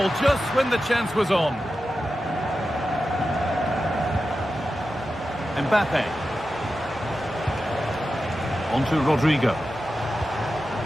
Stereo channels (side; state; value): right; noise; hum, 25 dB below the sound